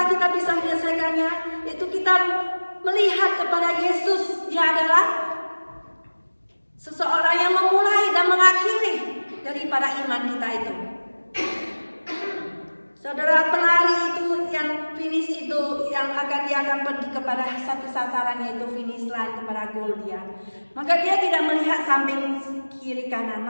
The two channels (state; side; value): inverted; both; correlation -1.00